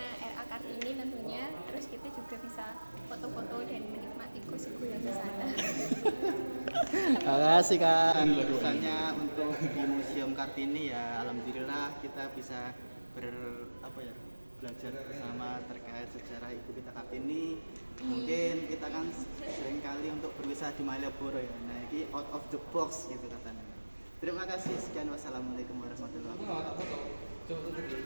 R.A. Kartini tentunya. Terus kita juga bisa foto-foto dan menikmati gosip yang di sana. Terima kasih, Kak. Pesannya untuk di Museum Kartini ya, alhamdulillah kita bisa belajar bersama terkait sejarah ibu kita Kartini. Mungkin kita kan sering kali untuk berwisata di Malioboro ya. Nah, ini out of the box gitu katanya. Terima kasih. Sekian, wassalamualaikum warahmatullahi wabarakatuh.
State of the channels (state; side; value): inverted; both; correlation -1.00